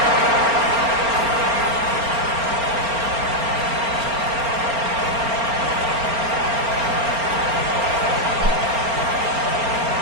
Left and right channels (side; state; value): left; late; 4.3 ms